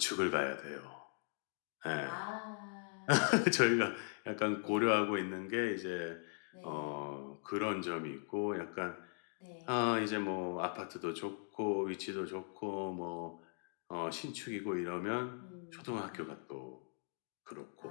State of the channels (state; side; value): silent; right; 51 dB below the other